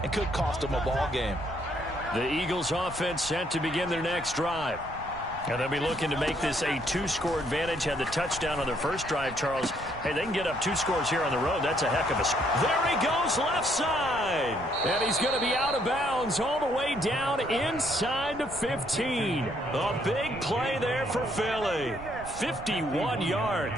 and could cost them a ball game? The Eagles offense set to begin their next drive. And they'll be looking to make this a 2-score advantage. Had the touchdown on their first drive, Charles. Hey, they can get up 2 scores here on the road. That's a heck of a... There he goes, left side. And he's going to be out of bounds all the way down inside the 15. A big play there for Philly. 51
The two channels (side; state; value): right; noise; rumble, 15 dB below the sound